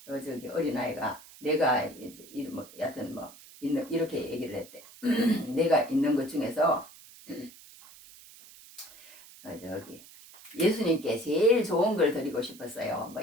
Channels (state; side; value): noise; right; hiss, 20 dB below the sound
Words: 어린아이가 내가 이제 뭐 여하튼 뭐 있는 이렇게 얘기를 했대. 내가 있는 것 중에서 저기 예수님께 제일 좋은 걸 드리고 싶었어요. 뭐